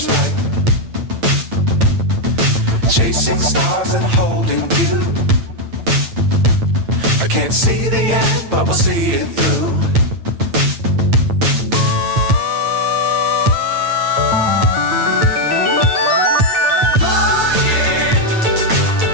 right. Chasing stars and holding you. I can't see the end, but we'll see it through.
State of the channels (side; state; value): left; late; 9.0 ms